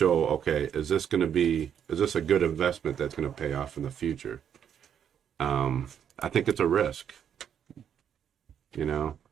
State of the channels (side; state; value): left; quieter; 8.7 dB